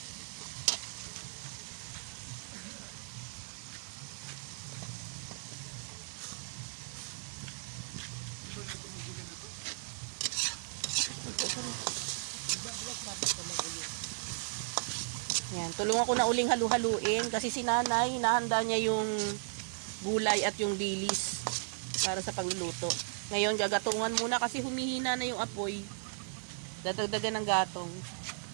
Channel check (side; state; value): left; silent; digital silence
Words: Yan, tulungan ko na uling halu-haluin kasi si nanay, hinahanda niya yung gulay at yung dilis para sa pagluluto. Ngayon, gagatungan muna kasi humihina na yung apoy. Dadagdagan ng gatong.